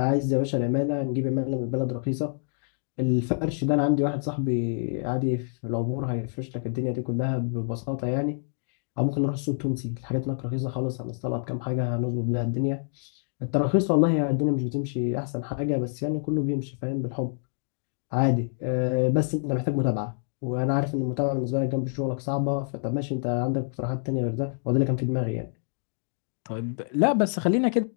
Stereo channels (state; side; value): silent; right; digital silence